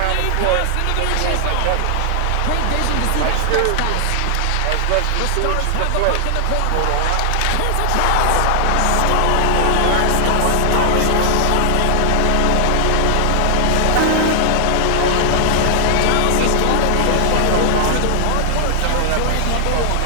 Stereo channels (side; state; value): both; different; correlation 0.00